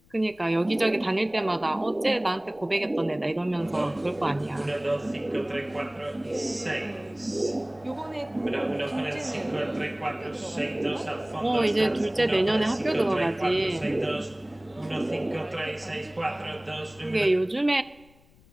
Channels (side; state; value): left; noise; rumble, 28 dB below the sound